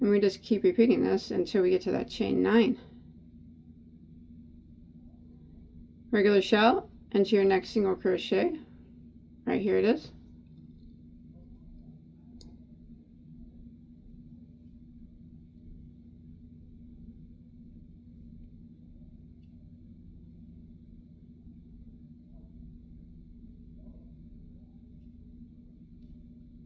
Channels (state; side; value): identical; both; correlation 1.00